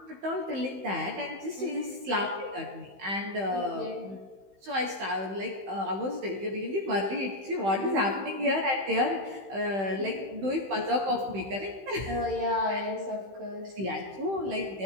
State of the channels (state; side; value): late; left; 15 ms